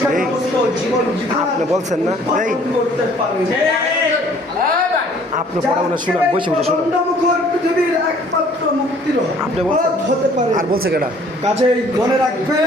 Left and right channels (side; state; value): both; normal; correlation 0.57